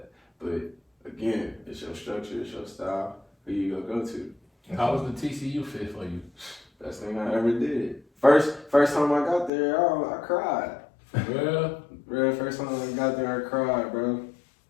But again, it's your structure, it's your style, who you go to. How was the TCU fit for you? Best thing I ever did. First time I got there, I cried. For real? First time I got there, I cried, bro.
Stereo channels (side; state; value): right; drops out; at 9.5 s